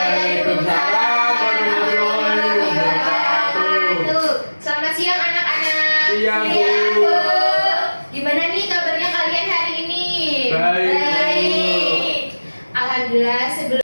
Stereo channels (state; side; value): inverted; both; correlation -1.00